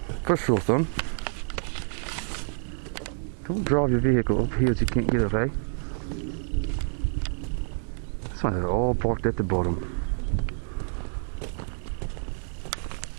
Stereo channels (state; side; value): silent; left; digital silence